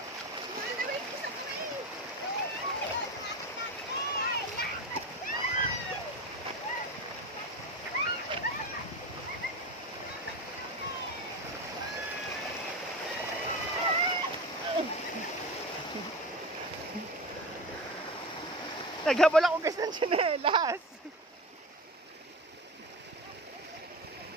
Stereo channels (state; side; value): normal; both; correlation 0.28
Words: Naghabol ako guys ng tsinelas.